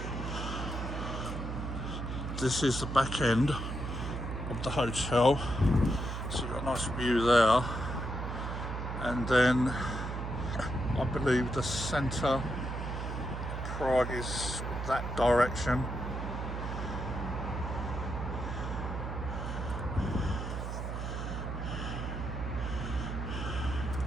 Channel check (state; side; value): noise; right; hum, 4 dB below the sound